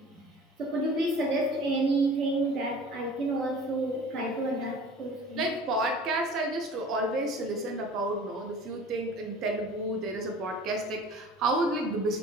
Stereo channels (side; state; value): both; normal; correlation 0.44